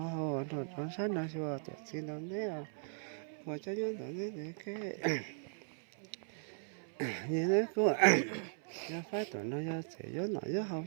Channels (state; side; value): silent; left; 52 dB below the other